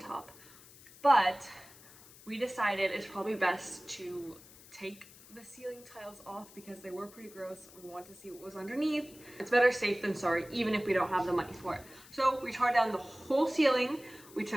But we decided it's probably best to take the ceiling tiles off because they were pretty gross. We want to see what was underneath. It's better safe than sorry, even if we don't have the money for it. So we tore down the whole ceiling. We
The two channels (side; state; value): left; noise; hiss, 21 dB below the sound